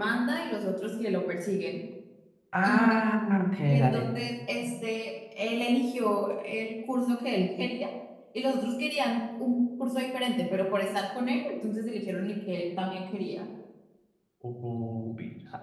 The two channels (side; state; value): both; identical; correlation 1.00